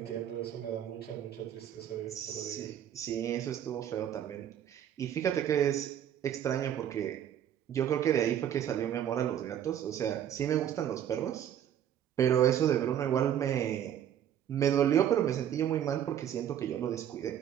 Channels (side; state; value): left; quieter; 10.2 dB